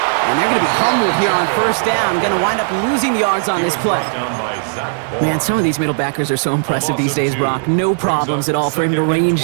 And they're going to be humbled here on 1st down. Going to wind up losing yards on this play. Man, some of these middle backers are so impressive these days, Brock. No problems at all for him to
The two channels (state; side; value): silent; left; digital silence